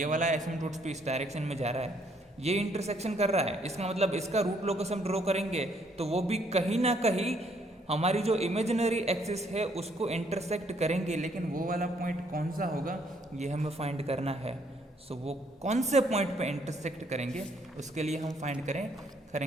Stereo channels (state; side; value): normal; both; correlation 0.68